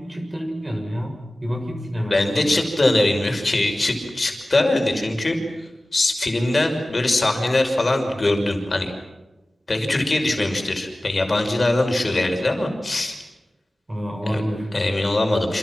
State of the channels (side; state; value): both; normal; correlation 0.97